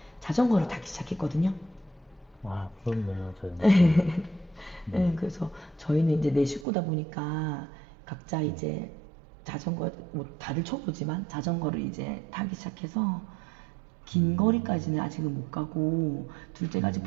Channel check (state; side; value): drops out; left; at 6.7 s